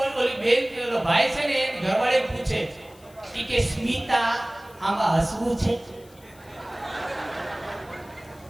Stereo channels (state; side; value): noise; left; hiss, 26 dB below the sound